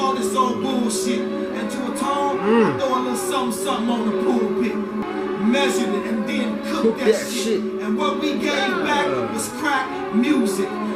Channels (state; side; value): identical; both; correlation 1.00